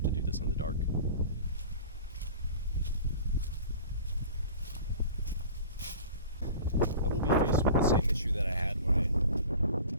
to do this in the dark. I will be faced with the issue that I had when I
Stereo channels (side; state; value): both; inverted; correlation -0.40